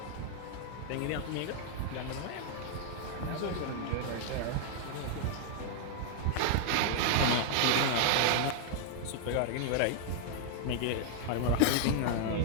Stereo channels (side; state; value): both; different; correlation -0.01